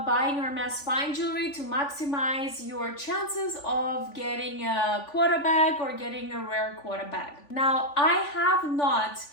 buying Hermes fine jewelry to maximize your chances of getting a Quota bag or getting a rare Quota bag. Now, I have not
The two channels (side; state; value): right; late; 3.5 ms